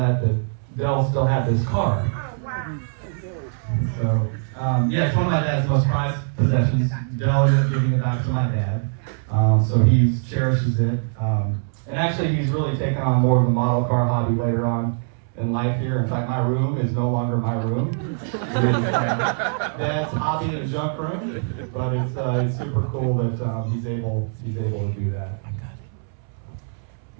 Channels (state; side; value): silent; left; 64 dB below the other